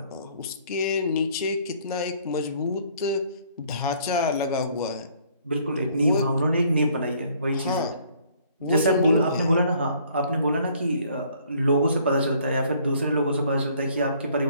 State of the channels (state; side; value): inverted; both; correlation -0.61